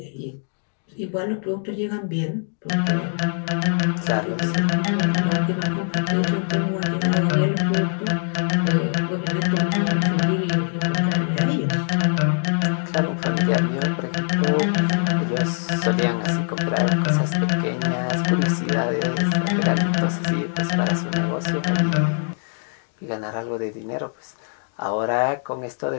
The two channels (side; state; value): right; silent; 58 dB below the other